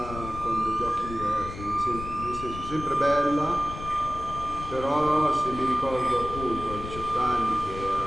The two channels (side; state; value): left; noise; rumble, 10 dB below the sound